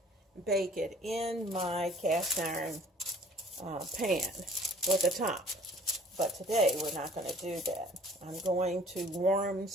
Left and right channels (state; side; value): normal; both; correlation 0.53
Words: bake it in my cast iron pan with a top. But today, we're not going to do that. I'm going to warm